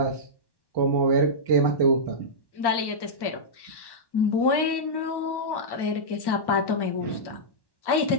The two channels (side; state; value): right; late; 1.1 ms